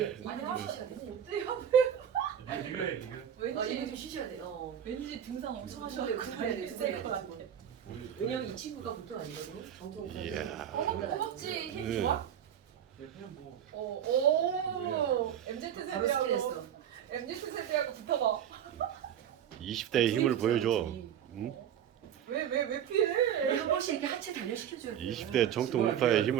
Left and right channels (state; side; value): quieter; left; 9.5 dB